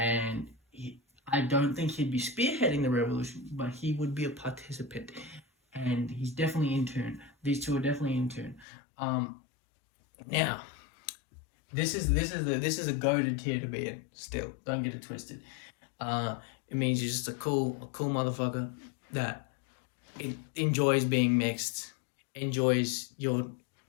I don't think he'd be spearheading the revolution, but he would be a participant, and he's definitely in tune. These two are definitely in tune. Now, this is a goated tier to be in. Still, don't get it twisted. It means you're just a cool motherfucker that enjoys being mixed, enjoys your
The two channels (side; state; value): right; drops out; at 8.7 s